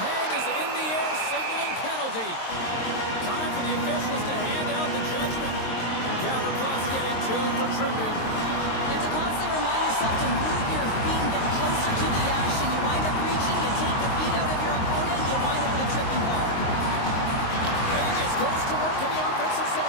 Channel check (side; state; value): right; late; 22 ms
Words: hand is in the air signaling penalty. Time for the officials to hand out the judgment. Gavrikov getting two for tripping. You have to constantly remind yourself to move your feet and get closer to the action. You wind up reaching, you take the feet out of your opponent, you wind up with a tripping ball. Vegas goes to work in the offensive